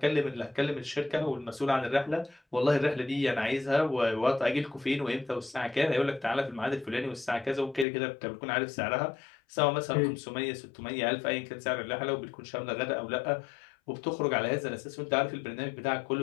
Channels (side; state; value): right; drops out; at 7.9 s